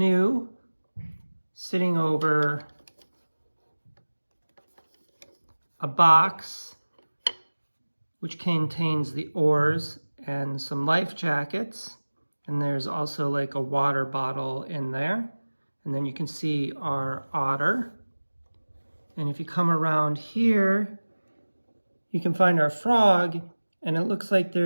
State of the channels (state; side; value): inverted; both; correlation -1.00